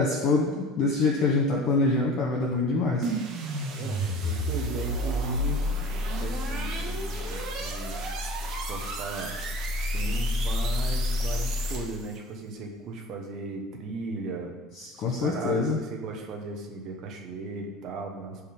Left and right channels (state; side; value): normal; both; correlation 0.42